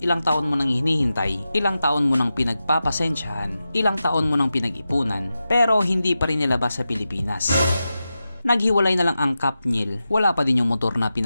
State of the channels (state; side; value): inverted; both; correlation -0.92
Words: ilang taon mo nang hinihintay, ilang taon mo nang pinagpapasensyahan, ilang taon mo nang pinag-ipunan, pero hindi pa rin nilabas sa Pilipinas. Naghiwalay na lang ang kapnyel, wala pa din yung motor na